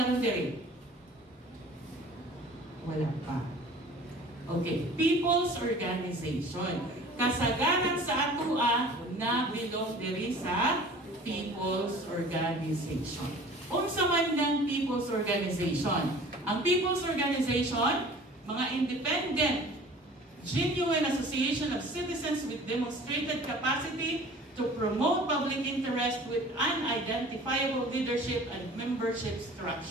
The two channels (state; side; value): normal; both; correlation 0.46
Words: diri? Wala pa. Okay, people's organization. Kasagaran sa atua na bilong diri sa people's organization. Unsa man ng people's organization? Ang people's organization, mga independent genuine association of citizens with demonstrated capacity to promote public interest with unidentifiable leadership and membership